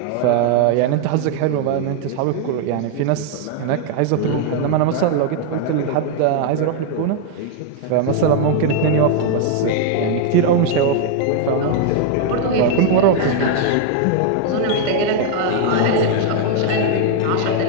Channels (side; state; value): both; different; correlation 0.00